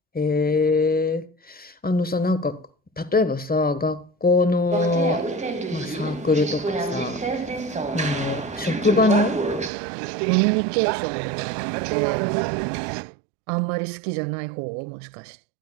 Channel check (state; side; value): drops out; left; at 9.7 s